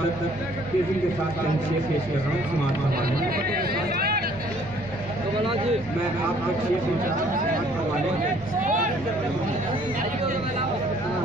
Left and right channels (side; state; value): both; normal; correlation 0.59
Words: तक तेजी के साथ शेर पेश कर रहा हूँ समाप्त करवाने, मैं आप तक शेर समाप्त करवाने,